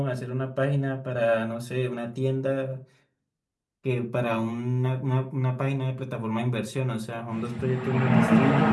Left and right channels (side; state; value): both; identical; correlation 1.00